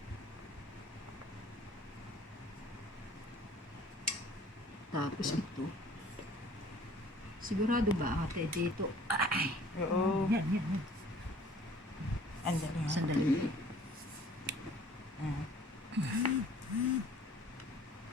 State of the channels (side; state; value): both; normal; correlation 0.52